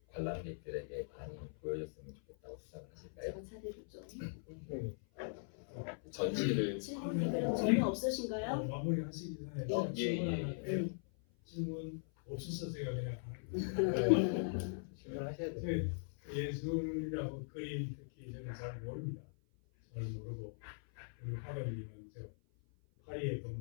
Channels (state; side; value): silent; right; 51 dB below the other